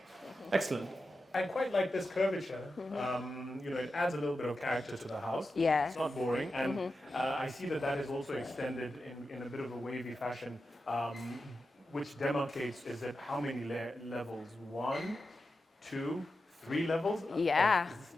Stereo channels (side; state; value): both; normal; correlation 0.90